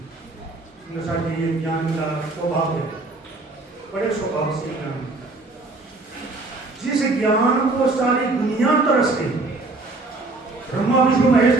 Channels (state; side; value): quieter; left; 3.2 dB